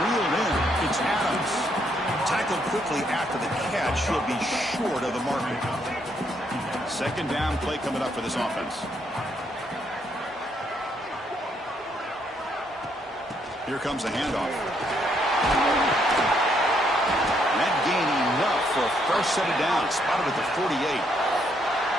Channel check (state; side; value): normal; both; correlation 0.73